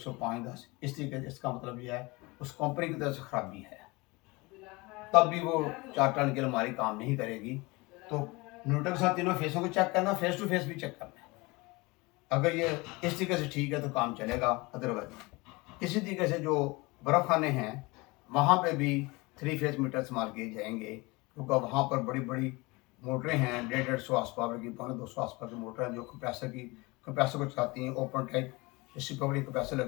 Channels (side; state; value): right; quieter; 24.3 dB